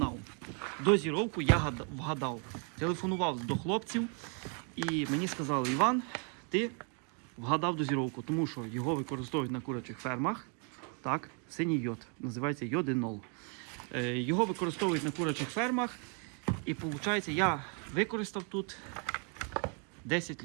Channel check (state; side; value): quieter; left; 39.3 dB